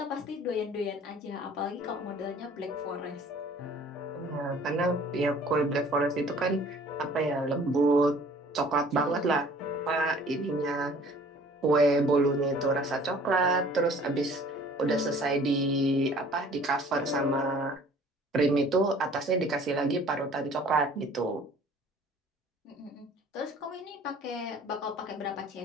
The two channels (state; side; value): normal; both; correlation 0.52